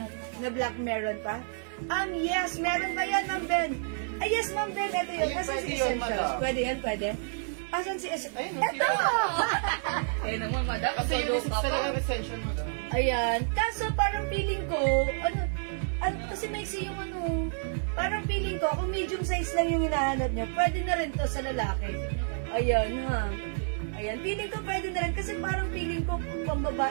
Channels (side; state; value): left; silent; digital silence